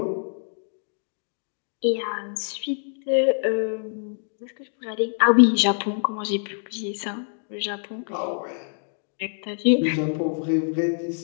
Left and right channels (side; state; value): right; silent; digital silence